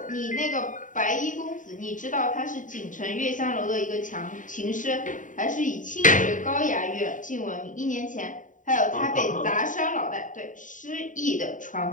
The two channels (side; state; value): right; late; 0.38 ms